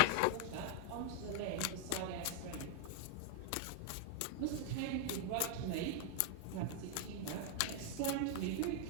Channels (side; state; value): both; different; correlation 0.00